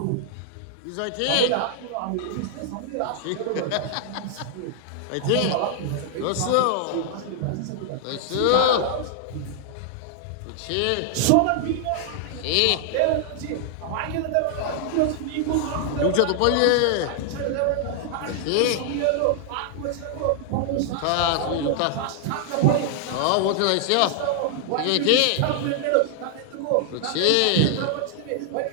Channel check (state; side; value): different; both; correlation 0.00